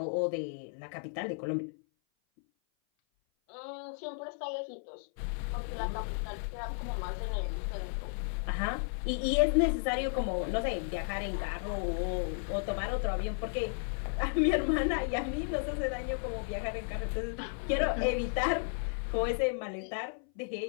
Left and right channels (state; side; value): silent; right; 55 dB below the other